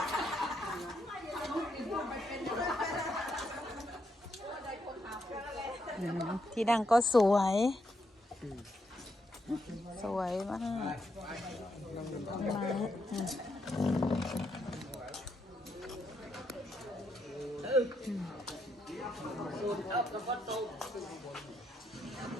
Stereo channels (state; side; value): normal; both; correlation 0.79